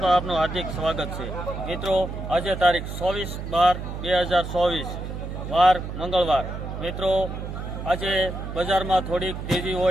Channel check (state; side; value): noise; right; hum, 7 dB below the sound